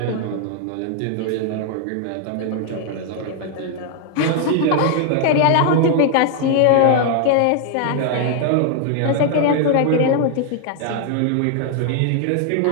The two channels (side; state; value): both; different; correlation 0.00